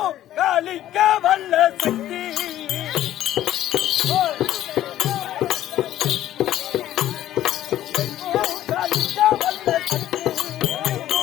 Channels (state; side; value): quieter; right; 12.9 dB